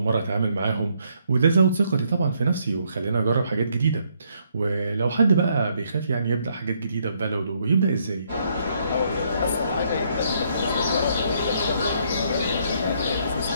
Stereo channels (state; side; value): inverted; both; correlation -0.71